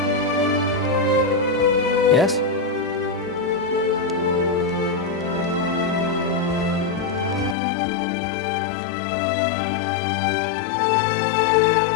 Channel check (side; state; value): right; drops out; at 7.6 s